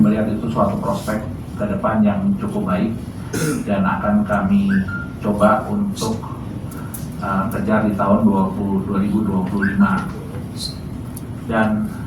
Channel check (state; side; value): identical; both; correlation 1.00